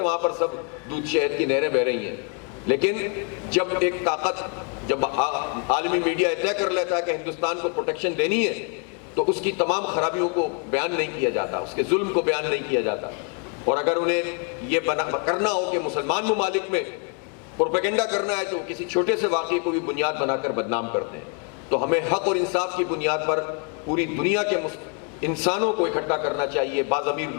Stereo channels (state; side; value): quieter; right; 37.2 dB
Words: وہاں پر سب دودھ شہد کی نہریں بہہ رہی ہیں، لیکن جب ایک طاقت، جب عالمی میڈیا طے کر لیتا ہے کہ ہندوستان کو پروٹیکشن دینی ہے، تو اس کی تمام خرابیوں کو بیان نہیں کیا جاتا، اس کے ظلم کو بیان نہیں کیا جاتا۔ اور اگر انہیں یہ کرنا ہو کہ مسلمان ممالک میں پروپیگنڈا کرنا ہے تو کسی چھوٹے سے واقعے کو بھی بنیاد بنا کر بدنام کرتے ہیں۔ تو ہمیں حق اور انصاف کی بنیاد پر پوری دنیا کے انسانوں کو اکٹھا کرنا چاہیے، باضمیر